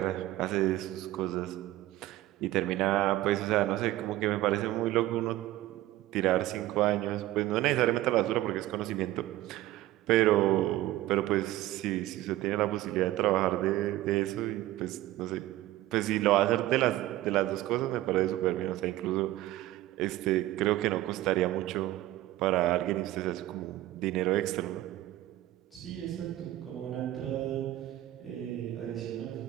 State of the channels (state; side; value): quieter; left; 15.6 dB